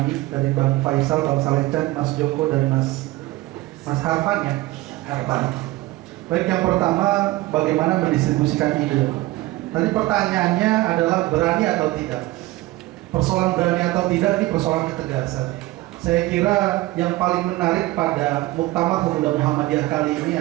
dari Bang Faisal, Bang Salechan, Mas Joko, dan Mas Harfan ya. Harfan. Baik, yang pertama bagaimana mendistribusikan ide. Tadi pertanyaannya adalah berani atau tidak. Persoalan berani atau tidak ini persoalan ketegasan. Saya kira yang paling menarik pada Muktamar Pemuda Muhammadiyah kali ini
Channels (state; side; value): quieter; left; 18.8 dB